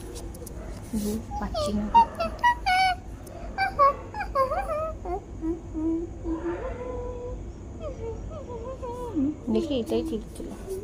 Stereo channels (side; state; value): both; identical; correlation 1.00